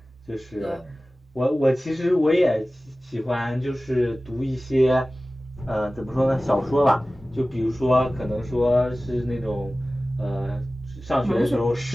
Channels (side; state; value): both; normal; correlation 0.97